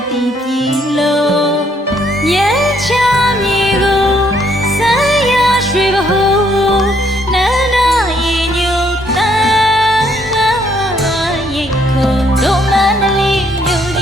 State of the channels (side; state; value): both; normal; correlation 0.69